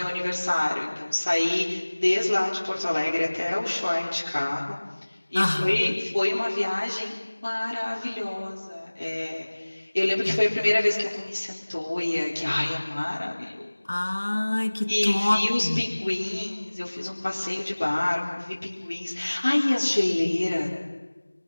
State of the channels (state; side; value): inverted; both; correlation -1.00